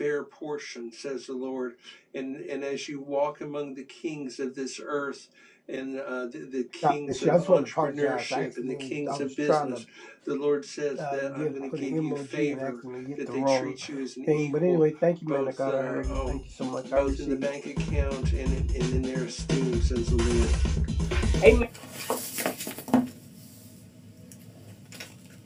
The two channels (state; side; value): identical; both; correlation 1.00